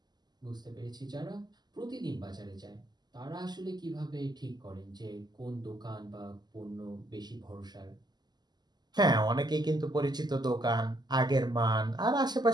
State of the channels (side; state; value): left; late; 0.20 ms